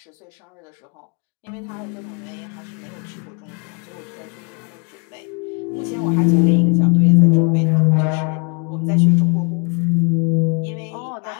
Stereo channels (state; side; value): quieter; right; 35.0 dB